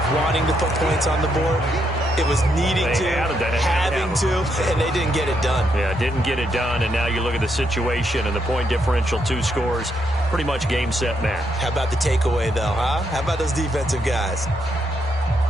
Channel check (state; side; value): normal; both; correlation 0.78